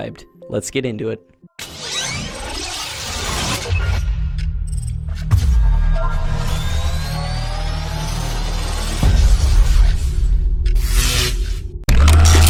Let's get into it.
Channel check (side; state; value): both; identical; correlation 1.00